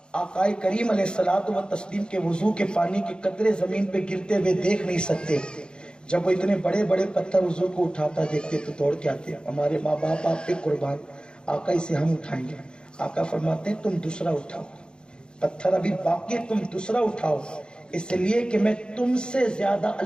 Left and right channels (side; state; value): right; late; 0.050 ms